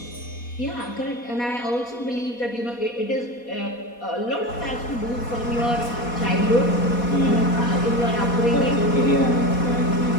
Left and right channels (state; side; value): late; right; 4.2 ms